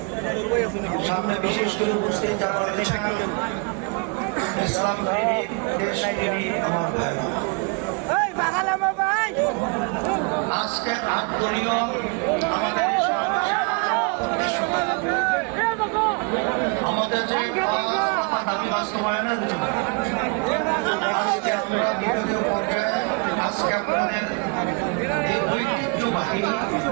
সামনে বিশেষ করে উপস্থিত যারা রয়েছেন, ইসলাম প্রেমিক, দেশ প্রেমিক আমার ভাইরা, আজকের আত্মীয় আমাদের আমাদের যে দাবি বাস্তবায়নের জন্য আজকে আমরা বিভাগীয় পর্যায়ে আজকে আপনাদের এই ঐতিহ্যবাহী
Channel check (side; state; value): left; quieter; 34.0 dB